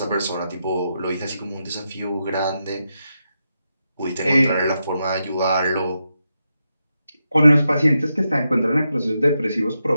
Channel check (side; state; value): both; inverted; correlation -0.86